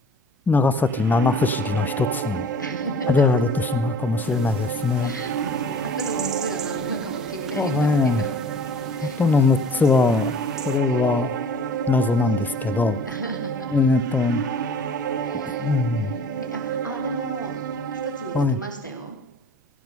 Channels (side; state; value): both; normal; correlation 0.48